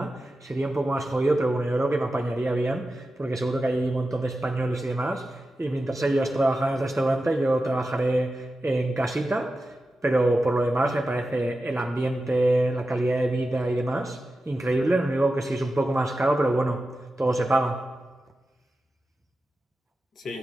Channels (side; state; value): both; normal; correlation 0.92